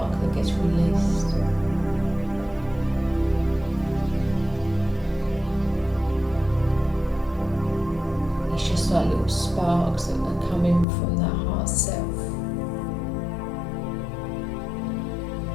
that gets released. It's just like little sparks that are coming from that heart self.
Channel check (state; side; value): drops out; right; at 10.9 s